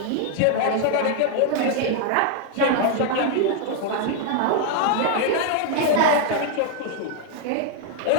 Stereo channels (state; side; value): different; both; correlation 0.00